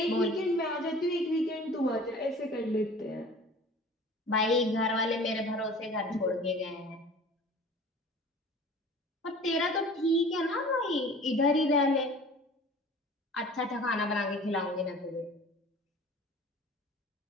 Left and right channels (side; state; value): both; normal; correlation 0.44